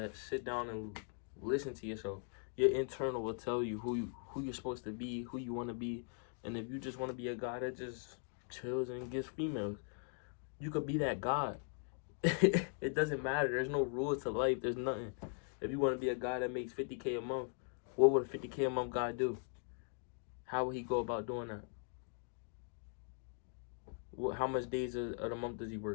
Sit down and listen to yourself. Your internal will tell you who you're supposed to be, who you want to be. And if you just want to be a guy that just chills and gets females, you could be that guy. It doesn't matter. There's no rules to life. There's nothing. If you want to be a guy that makes $50K a month, what would a $50K a month guy do? How would he go about doing that? How much days of the month does he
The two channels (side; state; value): right; silent; 51 dB below the other